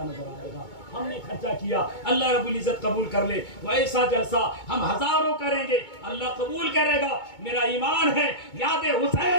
नजर आएगा। हमने खर्चा किया, अल्लाह रब्बुल इज्जत कबूल कर ले। वैसा जलसा हम हजारों करेंगे, अल्लाह कबूल करेगा। मेरा ईमान है, याद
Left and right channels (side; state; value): right; late; 2.2 ms